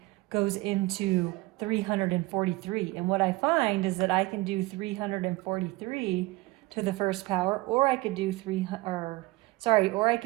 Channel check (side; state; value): left; quieter; 21.2 dB